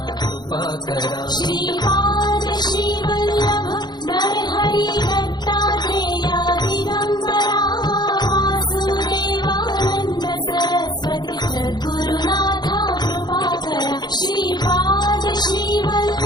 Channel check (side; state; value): right; late; 0.21 ms